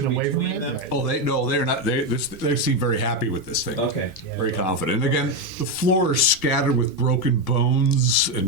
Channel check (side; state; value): left; noise; hum, 30 dB below the sound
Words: away from between it? them? Right. Oh, they're not. They seem very happy with this thing. Okay. Yeah. Very confident. And again, the floor is scattered with broken bones